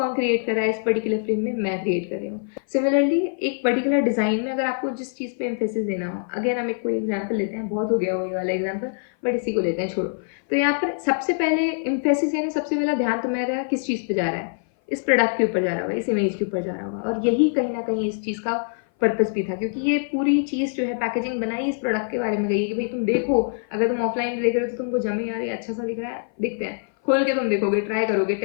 क्रिएट कर रहा है इस पर्टिकुलर फ्रेम में? मैं क्रिएट कर रही हूँ। सिमिलरली एक पर्टिकुलर डिजाइन में अगर आपको जिस चीज पे एम्फेसिस देना हो, अगेन हम एक कोई एग्जांपल लेते हैं, बहुत हो गया वो ये वाला एग्जांपल, बट इसी को लेते हैं, छोड़ो। तो यहाँ पर सबसे पहले एम्फेसिस यानी सबसे पहला ध्यान तुम्हारा किस चीज पे जा रहा है? इस प्रोडक्ट के ऊपर जा रहा होगा, इस इमेज के ऊपर जा रहा होगा, और यही कहीं ना कहीं इस चीज का पर्पस भी था, क्योंकि ये पूरी चीज जो है पैकेजिंग बनाई इस प्रोडक्ट के बारे में गई है कि भाई तुम देखो, अगर तुम ऑफलाइन देख रहे हो तो तुमको जमे यार ये अच्छा सा दिख रहा है, दिखते हैं, खोल के तुम देखोगे, ट्राई करोगे,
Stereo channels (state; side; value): silent; right; 58 dB below the other